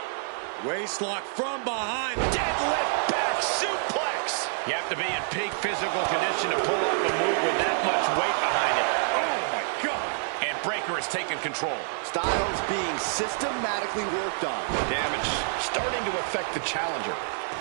Waistlock from behind. Deadlift back suplex. You have to be in peak physical condition to pull off a move with that much weight behind it. Oh, my God. And Breaker has taken control. Styles being systematically worked on. Damage starting to affect the challenger.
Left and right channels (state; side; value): silent; left; 60 dB below the other